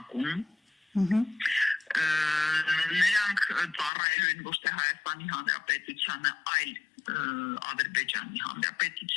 նրանք ծառայելու են ոչ թե Հայաստանի Հանրապետությանը, այլ Ադրբեջանի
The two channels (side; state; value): right; drops out; at 3.9 s